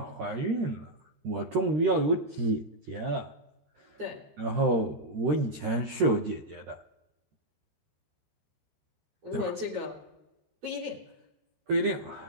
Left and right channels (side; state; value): left; late; 13 ms